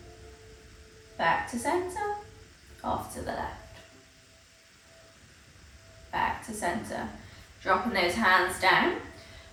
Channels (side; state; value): both; identical; correlation 1.00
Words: Back to center, off to the left. Back to center, dropping those hands down.